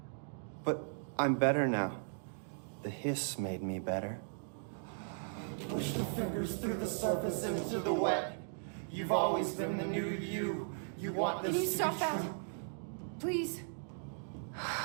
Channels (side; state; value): left; silent; digital silence